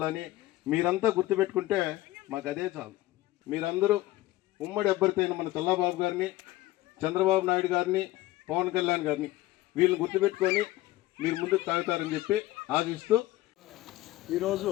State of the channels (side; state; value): right; quieter; 17.0 dB